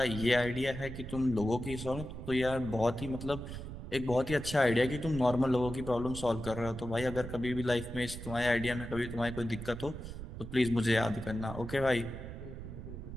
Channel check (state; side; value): noise; right; rumble, 9 dB below the sound